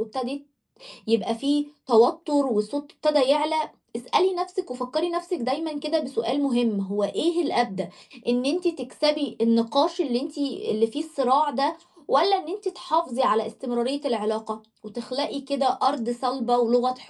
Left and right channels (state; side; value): identical; both; correlation 1.00